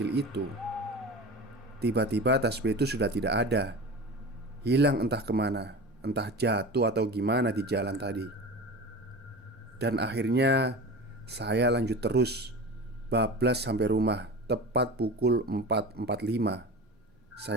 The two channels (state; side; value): normal; both; correlation 0.32